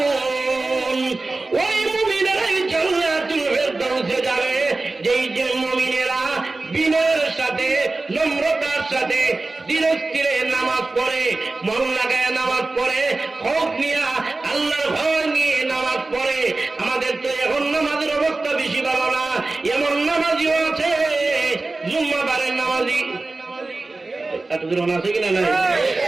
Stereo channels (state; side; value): quieter; left; 3.3 dB